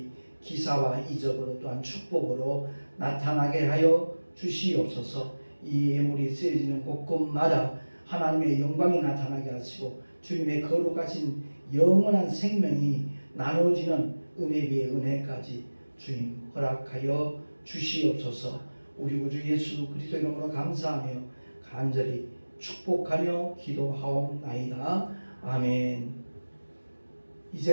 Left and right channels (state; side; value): inverted; both; correlation -1.00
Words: 기사와 이적으로 또한 축복으로 나타나게 하여 주시옵소서. 이 예물이 쓰여지는 곳곳마다 하나님의 영광이 나타나게 하시고 주님의 거룩하신 영원한 생명이 나눠지는 은혜 위에 은혜까지 주님 허락하여 주시옵소서. 우리 구주 예수 그리스도 이름으로 감사하며 간절히 축복하며 기도하옵나이다. 아멘.